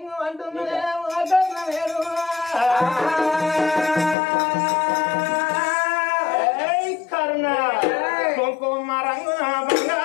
అంటున్నదే కర్ణ వేరు కర్ణ కుంకుమ రంగున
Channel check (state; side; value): drops out; right; at 4.2 s